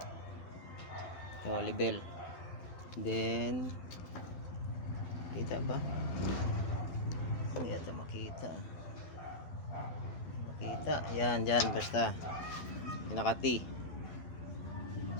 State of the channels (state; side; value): late; right; 12 ms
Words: Ito, level. Then, kita ba? Hindi ito makita. Makita. Yan, dyan, basta. Pinaka-T.